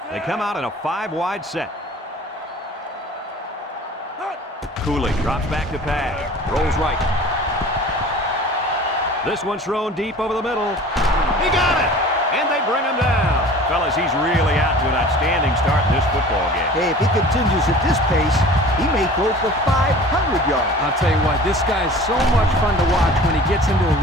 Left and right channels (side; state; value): both; normal; correlation 0.43